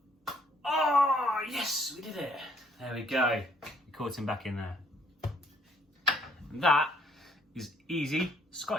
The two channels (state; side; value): normal; both; correlation 0.64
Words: Oh, yes, we did it. There we go. You caught him back in there. And that is easy